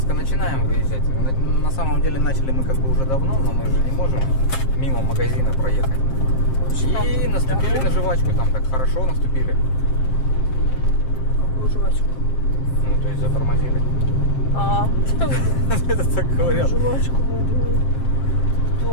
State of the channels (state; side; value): late; right; 7.5 ms